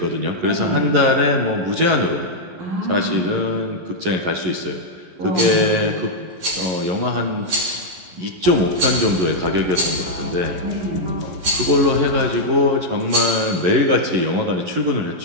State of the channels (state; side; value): late; left; 11 ms